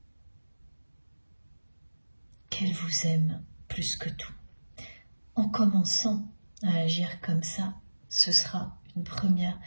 qu'elle vous aime plus que tout. En commençant à agir comme ça, ce sera une première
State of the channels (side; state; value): both; inverted; correlation -1.00